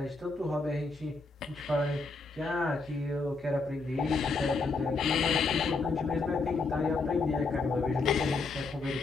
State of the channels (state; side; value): quieter; right; 3.8 dB